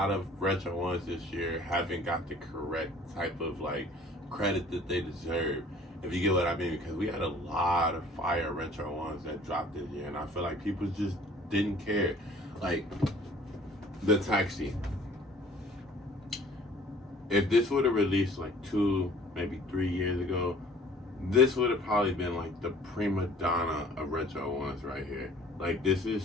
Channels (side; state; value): both; normal; correlation 0.52